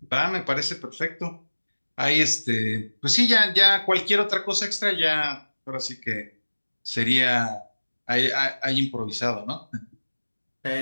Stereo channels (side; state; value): both; inverted; correlation -1.00